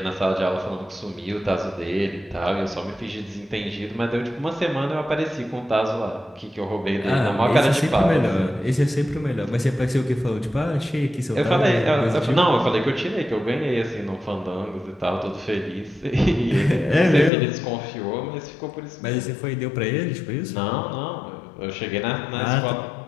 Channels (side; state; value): right; drops out; at 17.3 s